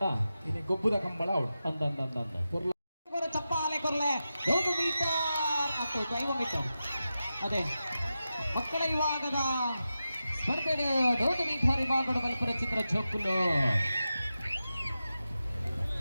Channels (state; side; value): inverted; both; correlation -0.92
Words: ಇನಿ ಗೊಬ್ಬುದ ಕಂಬಳ ಅವಳು ಅಂದ ಚಪ್ಪಾಲೆ ಕೊರ್ಲೆ 100 ಮೀಟರ್ ಮತ್ತು 5 ಮೀಟರ್ ಅದೇ ಮಕ್ಕಳ ವಿಭಾಗದ ಸ್ಪರ್ಧೆಗೆ 100 ಮೀಟರ್ ವಿಭಾಗದ ಬಲ್ಪುರ ಚಿತ್ರ ಜೋಕುಲು